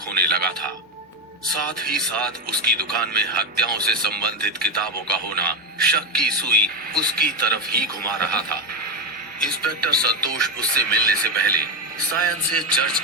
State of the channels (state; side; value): normal; both; correlation 0.11